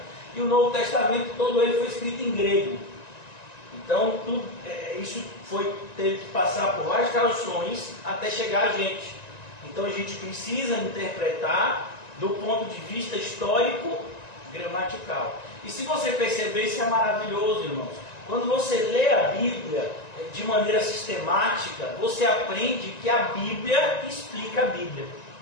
e o Novo Testamento todo ele foi escrito em grego. Então isso teve que passar por várias traduções até chegar a gente. Então a gente precisa interpretar do ponto de vista histórico gramatical. E se você perceber, isso é maravilhoso, irmãos. Quando você lê a Bíblia de maneira sistemática, você aprende que a Bíblia explica a Bíblia.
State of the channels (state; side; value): late; right; 1.9 ms